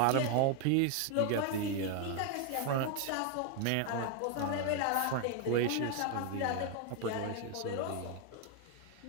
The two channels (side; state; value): both; different; correlation 0.01